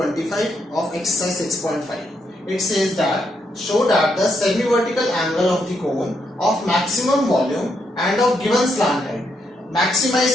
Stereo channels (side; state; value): both; normal; correlation 0.78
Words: of exercise 6.5. It says that show that the semi-vertical angle of the cone of maximum volume and of given slant height.